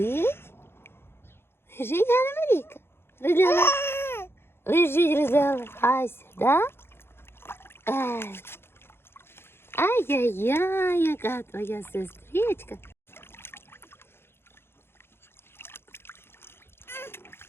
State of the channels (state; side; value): late; right; 0.11 ms